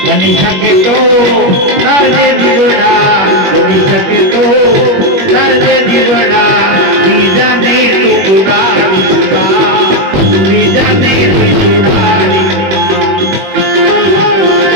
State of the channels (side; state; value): left; late; 21 ms